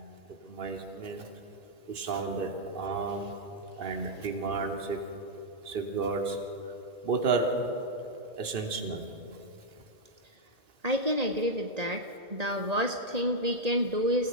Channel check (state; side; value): late; left; 2.6 ms